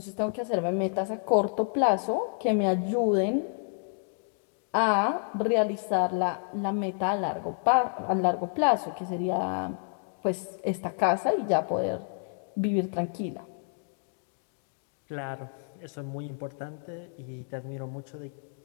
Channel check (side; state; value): right; silent; 58 dB below the other